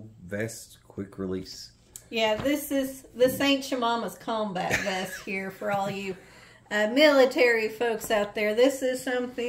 vest quick release. Yeah, this ain't your mama's combat vest here for all you military folks out there. This is something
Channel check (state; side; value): identical; both; correlation 1.00